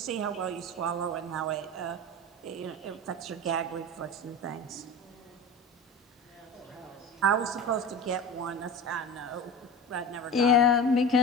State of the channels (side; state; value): both; normal; correlation 0.30